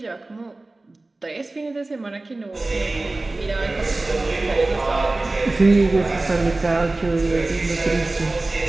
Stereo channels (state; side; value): quieter; left; 3.0 dB